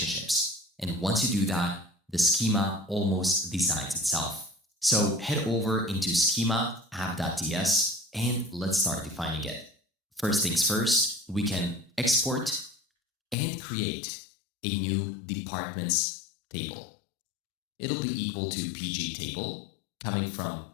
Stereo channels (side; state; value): right; drops out; at 13.4 s